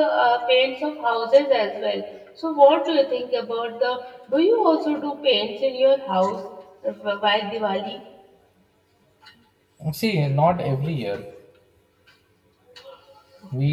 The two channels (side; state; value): both; identical; correlation 1.00